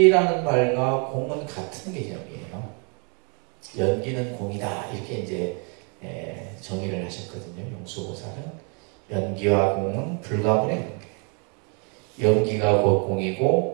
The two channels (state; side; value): quieter; left; 36.4 dB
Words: 말과 공은 같은 개념이에요. 연기는 공이다. 이렇게 이제 정의를 하셨거든요. 용수보살은. 연기와 공은 불가분의 관계. 연기가 곧